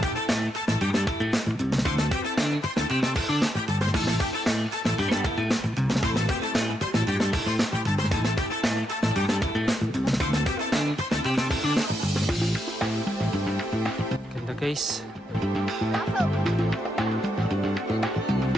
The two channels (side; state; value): both; normal; correlation 0.82